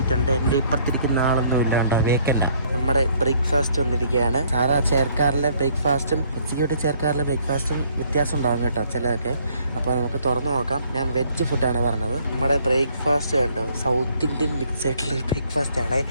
ഉണ്ട്. എൻ്റെ ഇപ്പുറത്തിരിക്കുന്ന ആളൊന്നും ഇല്ല കേട്ടോ, വേക്കൻ്റ്. നമ്മുടെ ബ്രേക്ക്ഫാസ്റ്റ് വന്നിരിക്കുകയാണ്. സാധാ ചെയർക്കാറിലെ ബ്രേക്ക്ഫാസ്റ്റും എക്സിക്യൂട്ടീവ് ചെയർക്കാറിലെ ബ്രേക്ക്ഫാസ്റ്റും വ്യത്യാസം ഉണ്ടാകും കേട്ടോ ചിലതൊക്കെ. അപ്പോൾ നമുക്ക് തുറന്നു നോക്കാം. ഞാൻ വെജ് ഫുഡാണ് പറഞ്ഞത്. നമ്മുടെ ബ്രേക്ക്ഫാസ്റ്റ് കണ്ടോ, സൗത്ത് ഇന്ത്യൻ മിക്സ് ആയിട്ടുള്ള ബ്രേക്ക്ഫാസ്റ്റ് ആണ്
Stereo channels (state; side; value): inverted; both; correlation -0.64